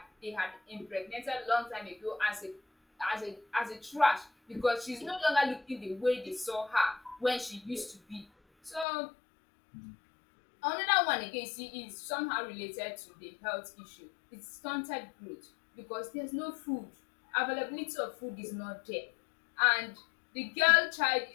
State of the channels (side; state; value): right; drops out; at 8.8 s